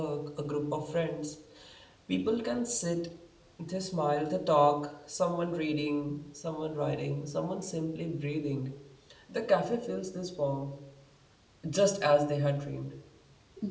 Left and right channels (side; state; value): both; identical; correlation 1.00